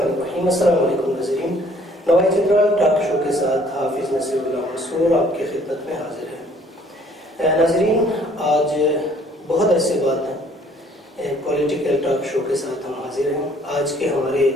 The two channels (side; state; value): both; normal; correlation 0.59